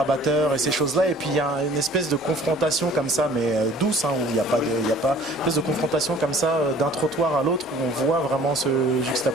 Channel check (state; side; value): noise; left; hum, 29 dB below the sound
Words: et ces choses-là, et puis il y a une espèce de confrontation comme ça, mais douce, où il n'y a pas une espèce de confrontation comme ça d'un trottoir à l'autre, où on voit vraiment se